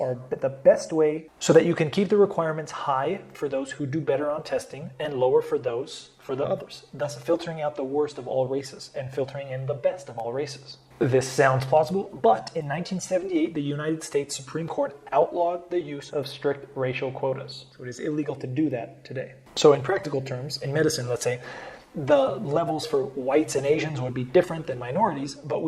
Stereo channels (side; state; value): both; identical; correlation 1.00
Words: the best way so that you can keep the requirements high for those who do better on testing and lower for the others, thus filtering out the worst of all races and filtering in the best of all races. This sounds plausible, but in 1978, the United States Supreme Court outlawed the use of strict racial quotas. So it is illegal to do that today. So in practical terms, in medicine, let's say, the levels for whites and Asians would be different than minorities, but